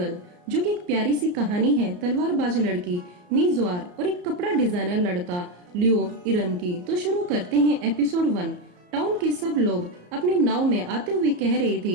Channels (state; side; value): late; left; 34 ms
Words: जो कि एक प्यारी सी कहानी है तलवारबाज लड़की मी ज़्वार और एक कपड़ा डिजाइनर लड़का लियो इरन की। तो शुरू करते हैं एपिसोड 1। टाउन के सब लोग अपनी नाव में आते हुए कह रहे